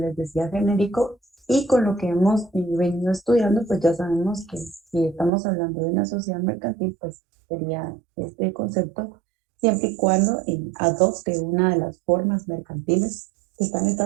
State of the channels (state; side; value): drops out; left; at 5.3 s